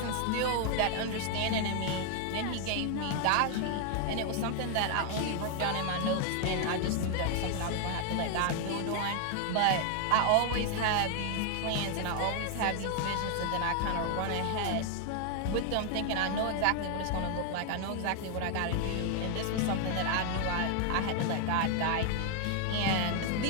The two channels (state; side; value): different; both; correlation 0.00